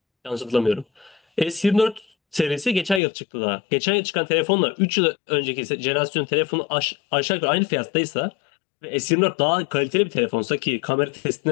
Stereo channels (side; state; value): right; drops out; at 3.0 s